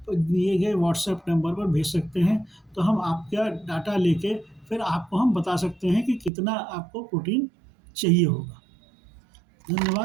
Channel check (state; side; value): drops out; left; at 6.3 s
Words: दिए गए व्हाट्सएप नंबर पर भेज सकते हैं, तो हम आपका डाटा लेके फिर आपको हम बता सकते हैं कि कितना आपको प्रोटीन चाहिए होगा।